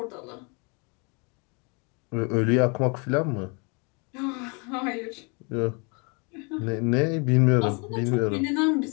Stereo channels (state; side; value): quieter; right; 32.9 dB